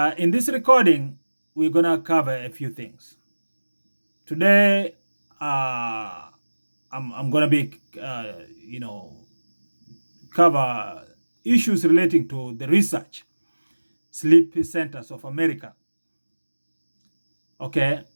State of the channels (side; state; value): both; inverted; correlation -1.00